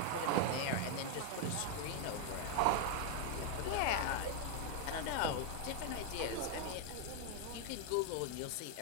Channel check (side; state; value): both; different; correlation 0.00